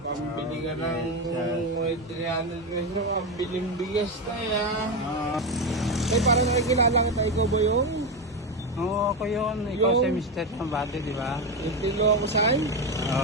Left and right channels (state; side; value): noise; left; hum, 26 dB below the sound